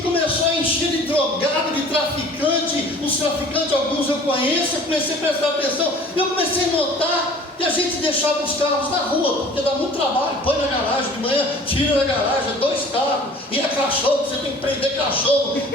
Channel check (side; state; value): both; normal; correlation 0.48